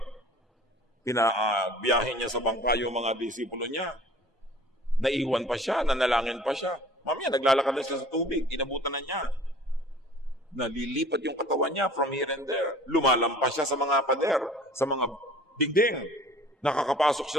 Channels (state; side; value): normal; both; correlation 0.47